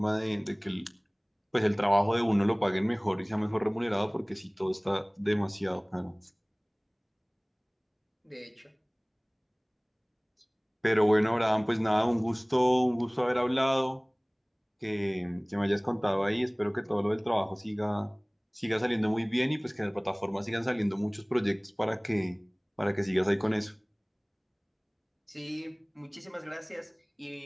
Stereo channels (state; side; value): identical; both; correlation 1.00